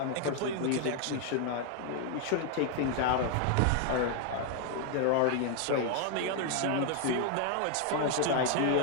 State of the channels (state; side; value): different; both; correlation 0.00